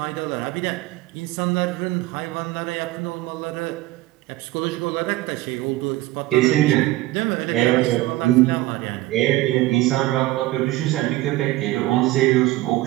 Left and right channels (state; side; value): quieter; left; 17.7 dB